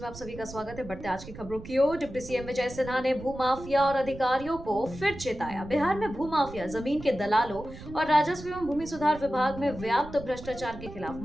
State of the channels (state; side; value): noise; right; rumble, 14 dB below the sound